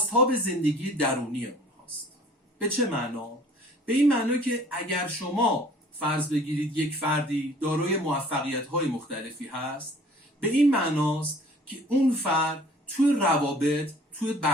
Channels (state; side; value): normal; both; correlation 0.51